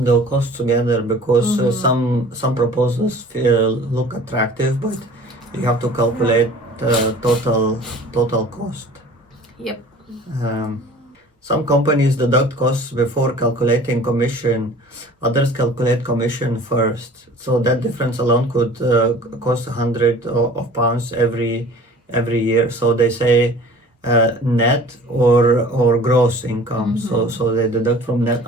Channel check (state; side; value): normal; both; correlation 0.46